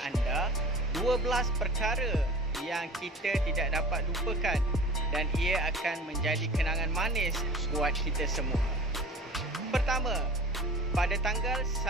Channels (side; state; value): both; normal; correlation 0.39